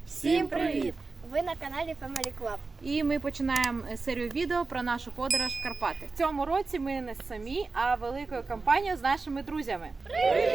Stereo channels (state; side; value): quieter; left; 4.0 dB